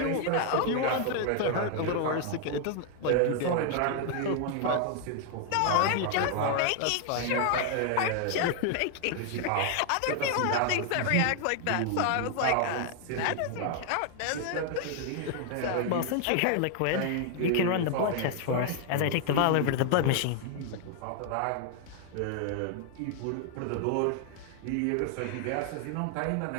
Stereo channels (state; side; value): different; both; correlation 0.00